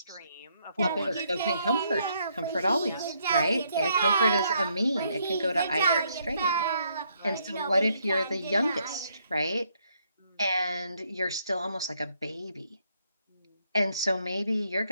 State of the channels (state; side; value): inverted; both; correlation -0.73